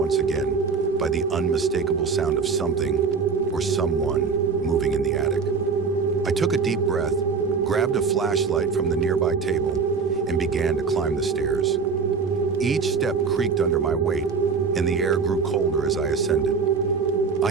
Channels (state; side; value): quieter; left; 5.2 dB